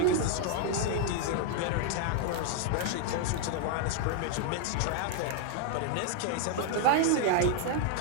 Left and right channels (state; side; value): different; both; correlation 0.00